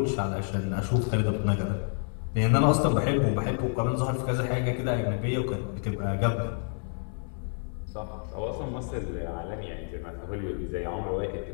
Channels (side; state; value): right; silent; 59 dB below the other